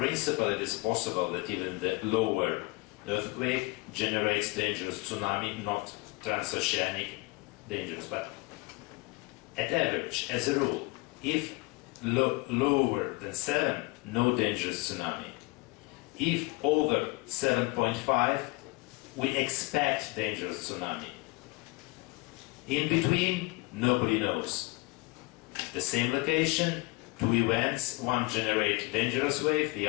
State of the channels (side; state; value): right; quieter; 24.3 dB